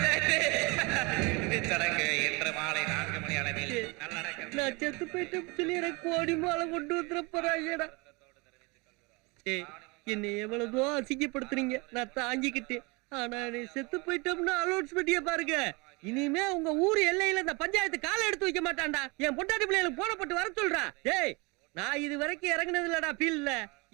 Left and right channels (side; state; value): left; quieter; 27.5 dB